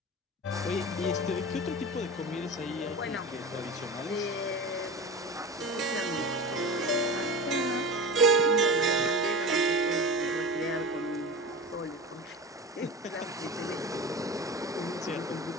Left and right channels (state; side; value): normal; both; correlation 0.30